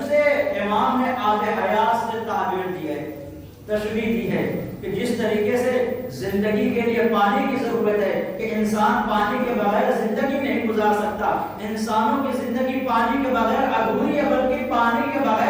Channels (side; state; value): both; identical; correlation 1.00